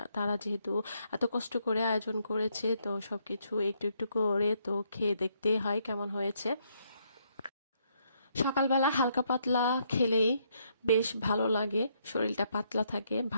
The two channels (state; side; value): inverted; both; correlation -0.74